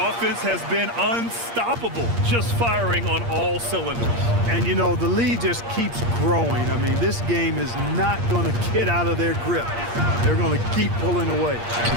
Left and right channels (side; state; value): left; late; 8.6 ms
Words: offense has been unstoppable, just firing on all cylinders. And, you know, the lead just keeps growing. I mean, this game is not going to get out of their grip. They're going to keep pulling away.